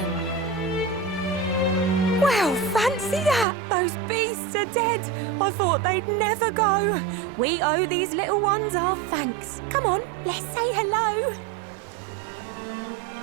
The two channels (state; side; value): drops out; left; at 3.5 s